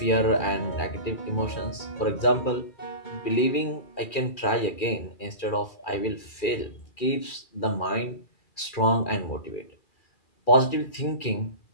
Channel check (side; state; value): right; late; 2.4 ms